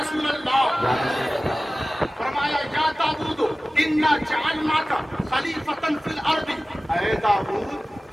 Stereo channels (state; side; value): normal; both; correlation 0.96